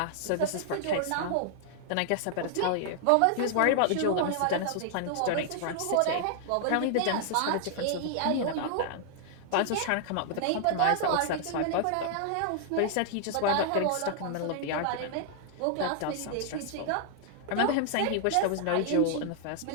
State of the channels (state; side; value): different; both; correlation 0.00